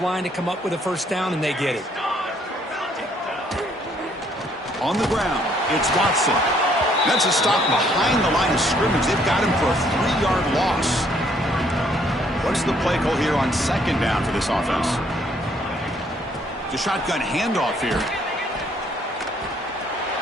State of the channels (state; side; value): normal; both; correlation 0.66